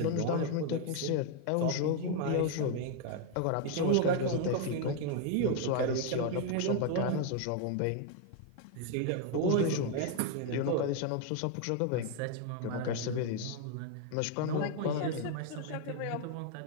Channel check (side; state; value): both; different; correlation 0.00